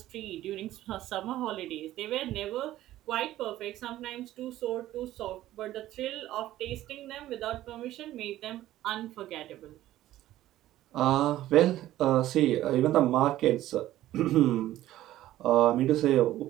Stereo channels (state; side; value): quieter; left; 14.3 dB